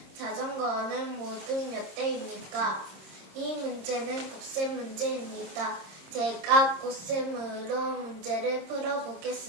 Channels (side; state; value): left; late; 26 ms